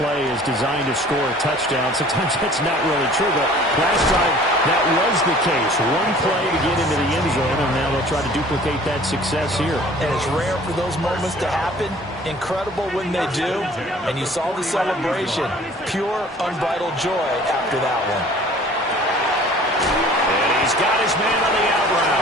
play is designed to score a touchdown. Sometimes that's not really true, but last time that was the case. One play to get into the end zone, and now they'll try to duplicate that success here. And it's rare for those moments to happen. Incredible when they do. And you saw the celebration. Pure, unbridled joy after that one. And he's got his man on the out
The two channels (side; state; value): both; normal; correlation 0.50